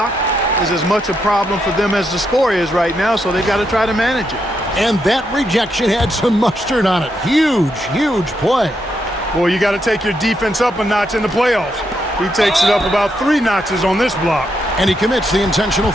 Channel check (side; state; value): both; normal; correlation 0.80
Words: is as much a problem for them as the score is right now, so they've got to try to manage it. And that rejection had some mustard on it. Huge, huge play. Boy, you got to take your defense up a notch in the playoffs. He takes it up about 3 notches on this block. And he commits the intentional